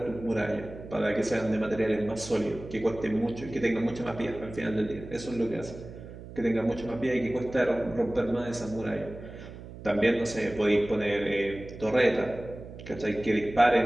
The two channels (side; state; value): right; noise; hum, 14 dB below the sound